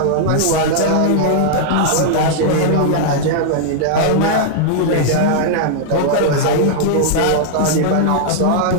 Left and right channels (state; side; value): different; both; correlation -0.01